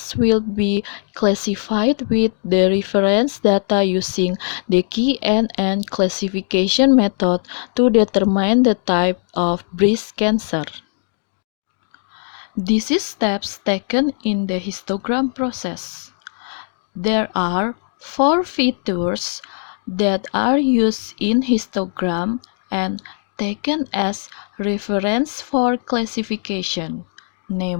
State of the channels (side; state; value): right; silent; digital silence